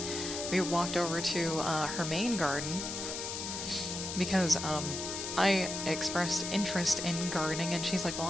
We walked over to her main garden because I expressed interest in gardening, and she's like, well,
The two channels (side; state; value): left; noise; hiss, 5 dB below the sound